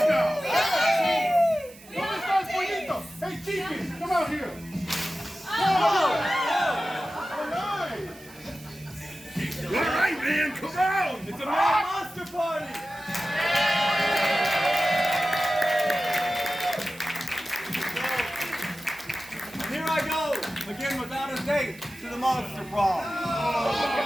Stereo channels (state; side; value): noise; right; hiss, 22 dB below the sound